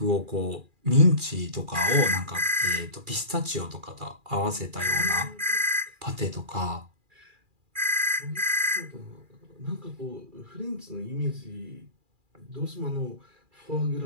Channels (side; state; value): left; late; 2.4 ms